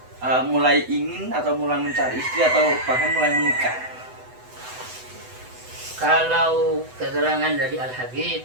mulai ingin atau mulai mencari istri atau bahkan mulai menikah? Kalau keterangan dari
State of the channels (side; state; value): left; late; 8.0 ms